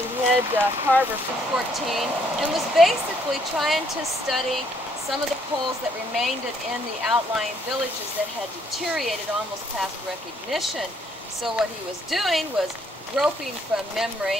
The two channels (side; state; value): both; normal; correlation 0.68